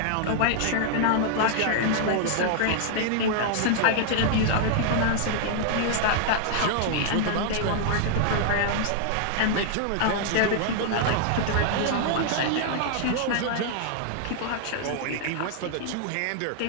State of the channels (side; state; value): both; different; correlation -0.01